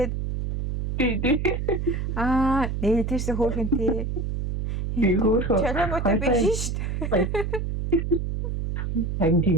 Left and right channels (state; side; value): noise; right; hum, 2 dB below the sound